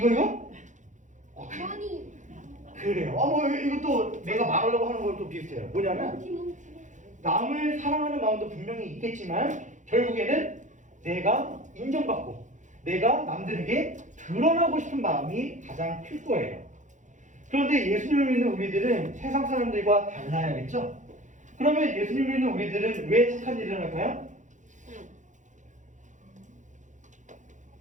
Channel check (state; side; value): late; left; 0.36 ms